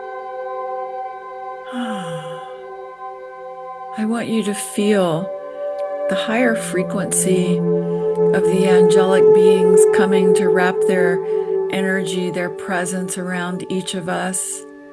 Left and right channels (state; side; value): identical; both; correlation 1.00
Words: I want you to feel the higher frequency of the angelic beings coming to wrap their energy, their presence around each of us.